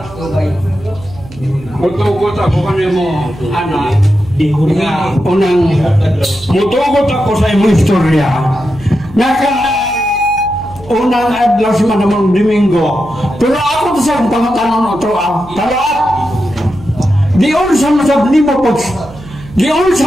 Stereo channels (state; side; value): noise; right; hum, 18 dB below the sound